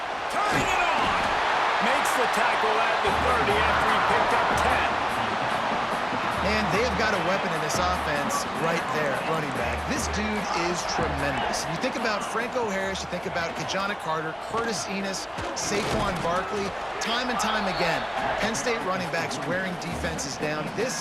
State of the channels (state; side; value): identical; both; correlation 1.00